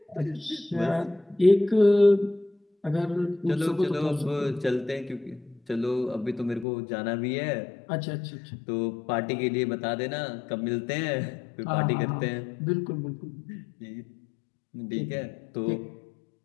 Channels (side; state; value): right; drops out; at 6.7 s